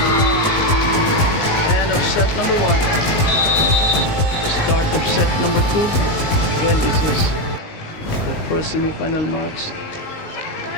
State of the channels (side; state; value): right; late; 19 ms